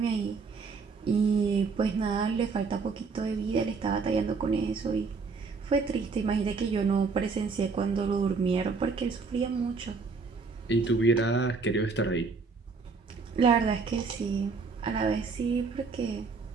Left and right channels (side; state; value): left; quieter; 4.7 dB